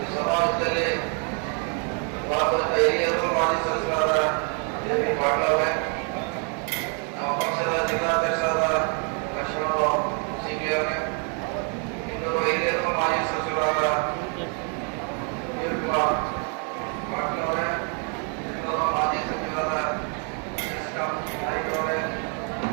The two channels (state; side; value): quieter; left; 39.2 dB